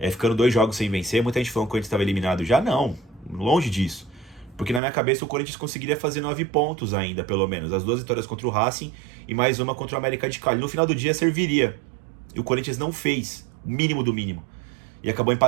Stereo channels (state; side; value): drops out; left; at 4.8 s